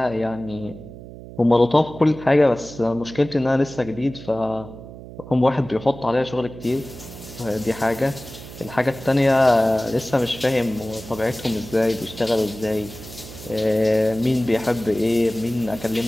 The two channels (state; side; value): noise; right; hum, 15 dB below the sound